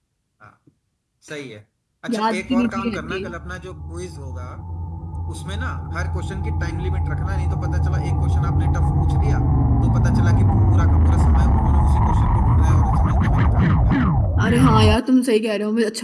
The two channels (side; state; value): both; identical; correlation 1.00